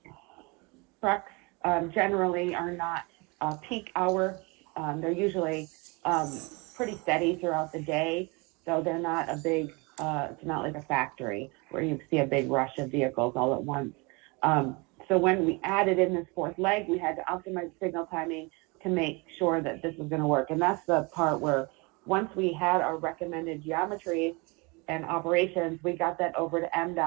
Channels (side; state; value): left; quieter; 28.2 dB